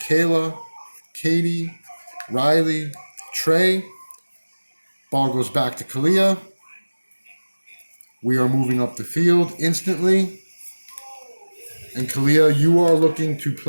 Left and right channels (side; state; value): both; inverted; correlation -1.00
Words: Katie, Riley, Trey. Ball goes back to Kalia. We are moving up the field instantly. And Kalia, you are looking to